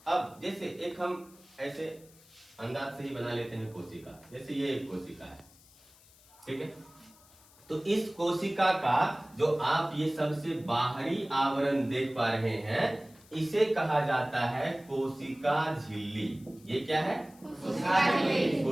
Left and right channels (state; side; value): noise; left; hiss, 26 dB below the sound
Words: अब जैसे एक हम ऐसे अंदाज से ही बना लेते हैं कोशिका। जैसे ये एक कोशिका है, ठीक है। तो इस कोशिका का जो आप ये सबसे बाहरी आवरण देख पा रहे हैं इसे कहा जाता है कोशिका झिल्ली। ये क्या है?